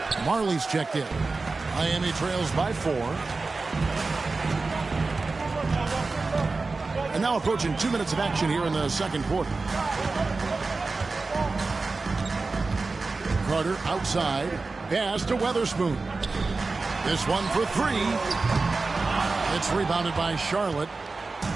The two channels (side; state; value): left; quieter; 3.8 dB